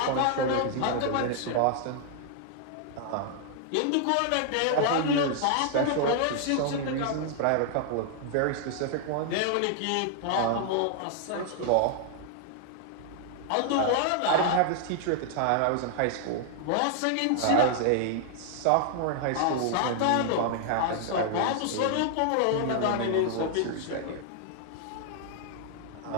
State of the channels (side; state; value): both; different; correlation -0.01